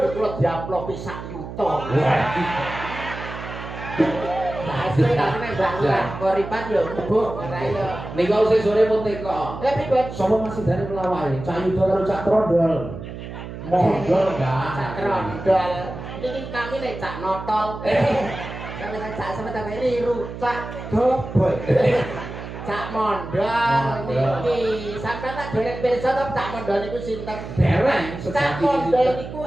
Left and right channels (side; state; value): right; noise; hum, 10 dB below the sound